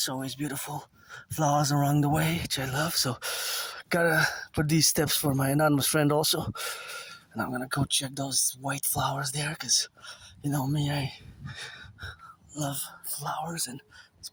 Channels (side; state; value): both; identical; correlation 1.00